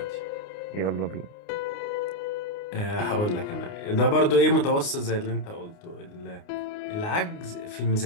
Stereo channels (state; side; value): late; right; 29 ms